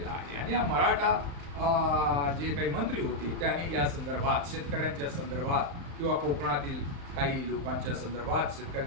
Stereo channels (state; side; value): late; left; 35 ms